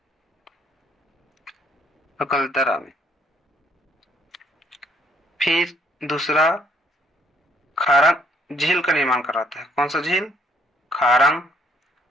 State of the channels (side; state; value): both; normal; correlation 0.66